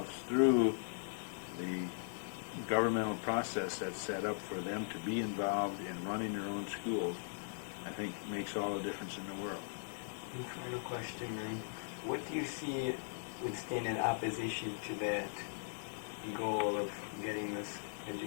through the governmental process that's set up for them to be involved in running their own schools, I think makes all the difference in the world. And final question, Ray. What do you see would stand in opposition to that goal of getting this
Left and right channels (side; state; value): right; silent; digital silence